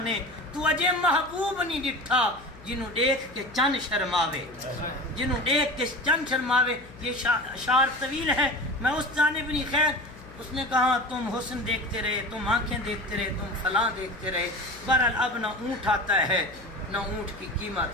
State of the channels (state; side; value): noise; left; hum, 20 dB below the sound